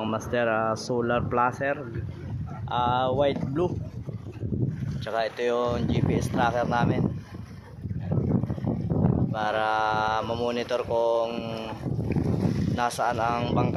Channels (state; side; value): identical; both; correlation 1.00